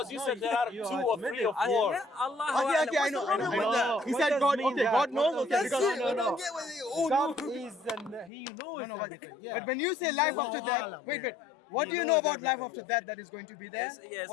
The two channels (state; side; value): drops out; right; at 8.3 s